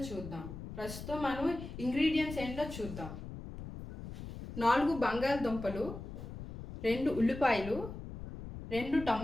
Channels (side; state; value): left; noise; rumble, 10 dB below the sound